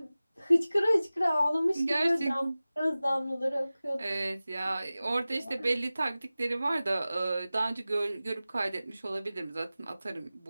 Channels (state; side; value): inverted; both; correlation -0.97